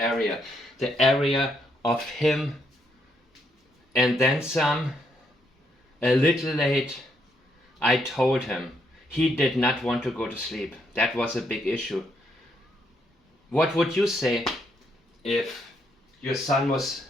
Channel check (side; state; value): both; normal; correlation 0.75